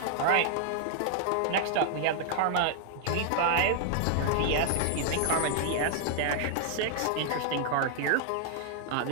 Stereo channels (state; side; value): different; both; correlation 0.00